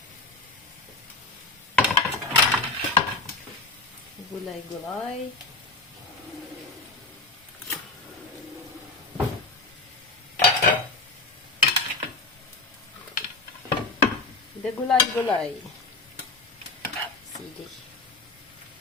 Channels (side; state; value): right; quieter; 3.3 dB